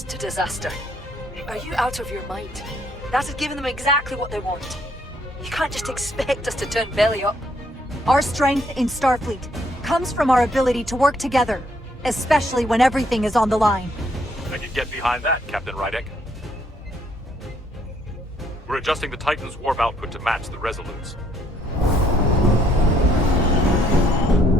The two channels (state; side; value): normal; both; correlation 0.68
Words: to disaster. Are you out of your mind? That has given them exactly what they want. You can't just expect us to turn belly up. Our strength in Starfleet comes from our ability to work together, especially when everything is on the line. I can get behind that, Captain Rydek. We're adjusting the Titan's warp output to match the Resolute's.